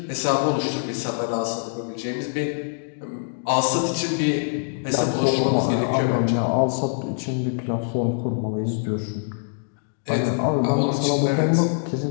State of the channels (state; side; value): silent; right; digital silence